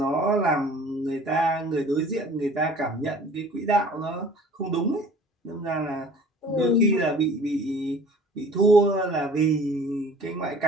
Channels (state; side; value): normal; both; correlation 0.47